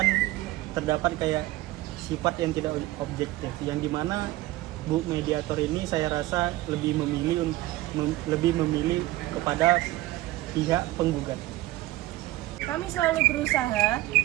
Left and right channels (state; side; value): quieter; left; 17.3 dB